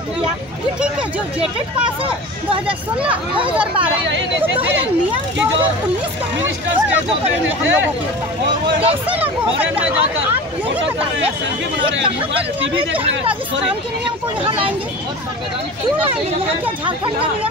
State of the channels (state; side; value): noise; right; hum, 30 dB below the sound